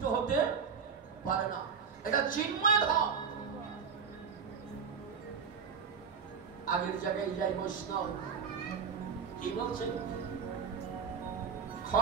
হতে পারে না, এটা চিন্ময় ধাম। আগের জায়গায় যাই বৈষ্ণব কি বলছে,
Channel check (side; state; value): left; quieter; 6.3 dB